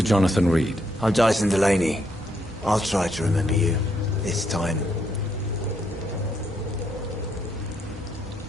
Jonathan Reed. I'm Dyson Delaney. I'll try to remember you. This time.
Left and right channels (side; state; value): both; normal; correlation 0.75